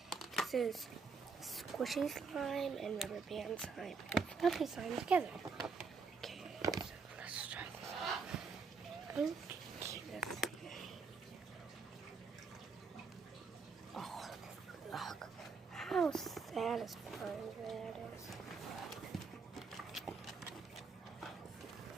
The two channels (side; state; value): left; quieter; 5.0 dB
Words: This is squishy slime and rubber band slime and fluffy slime together. Okay, so let's try this. Oh, look how satisfying that is.